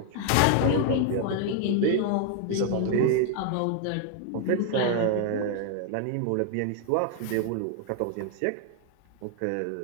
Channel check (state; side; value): different; both; correlation 0.00